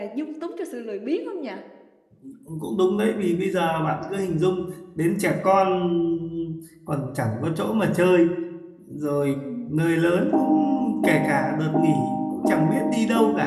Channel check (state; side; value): identical; both; correlation 1.00